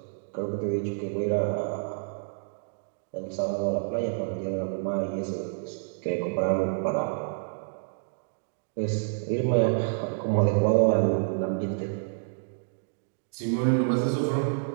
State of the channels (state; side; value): silent; left; digital silence